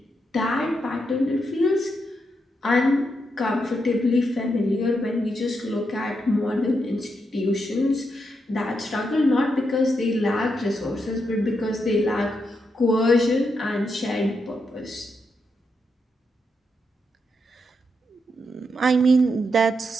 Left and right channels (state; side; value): normal; both; correlation 0.83